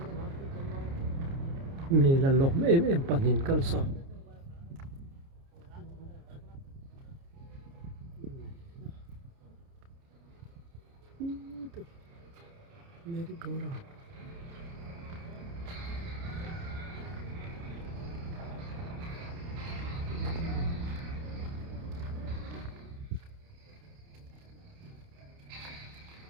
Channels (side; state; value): left; late; 29 ms